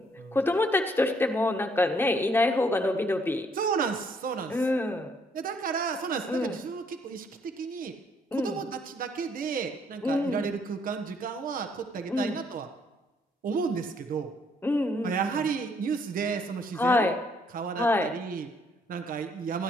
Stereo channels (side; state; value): both; normal; correlation 0.67